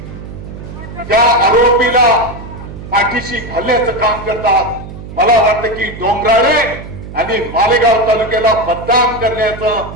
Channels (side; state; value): right; noise; hum, 12 dB below the sound